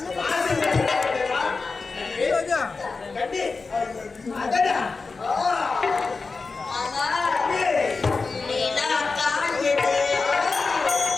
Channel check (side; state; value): right; quieter; 4.2 dB